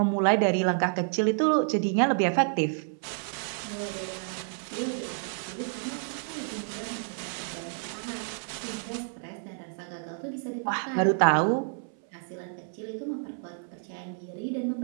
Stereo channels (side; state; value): left; silent; 58 dB below the other